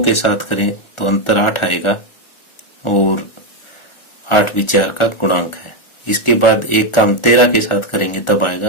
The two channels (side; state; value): right; late; 1.4 ms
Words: के साथ करें तो अंतर 8 आएगा, और 8 भी 4 का गुणांक है। इसके बाद एक का हम 13 के साथ करेंगे तब